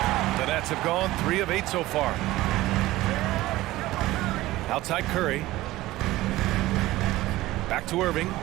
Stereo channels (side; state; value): left; quieter; 17.3 dB